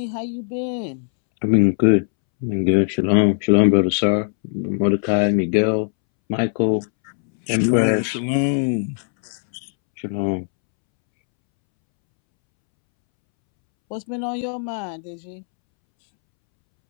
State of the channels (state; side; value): silent; right; 66 dB below the other